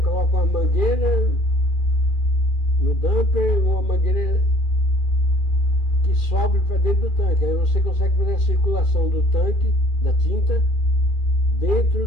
uma mangueira no dumper, uma mangueira que sobe para dentro do tanque. Aí você consegue fazer a circulação do tanque, da tinta, dentro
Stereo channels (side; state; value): right; late; 2.4 ms